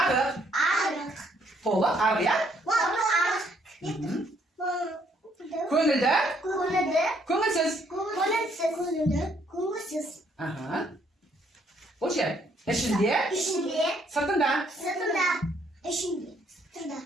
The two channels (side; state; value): both; normal; correlation 0.68